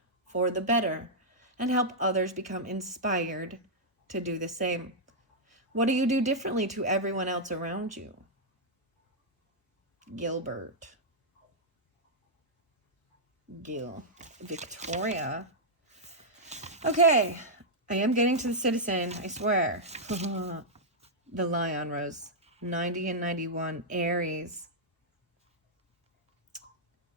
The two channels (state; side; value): normal; both; correlation -0.07